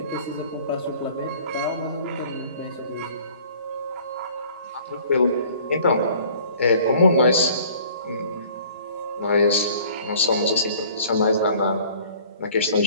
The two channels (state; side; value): inverted; both; correlation -0.52